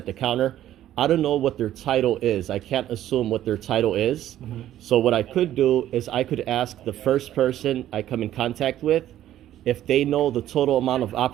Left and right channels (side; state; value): left; quieter; 12.5 dB